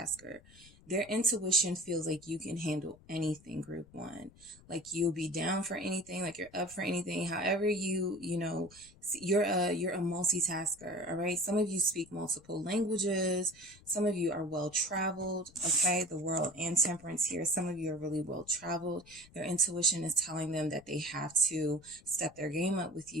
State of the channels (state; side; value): noise; left; rumble, 25 dB below the sound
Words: Their intuition feels like you can handle anything, group one. Like you'll be down for anything, like you're up for anything. However you're a multitasker, all right? Some of you speak multiple languages. Some of you are well traveled, okay? The world and temperance here. Some of you are really well traveled. Their intuition is telling them that they have to step their game up with